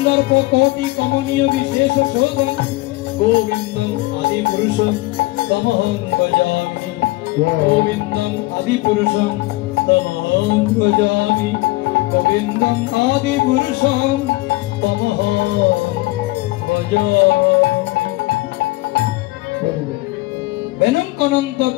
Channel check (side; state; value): right; quieter; 20.4 dB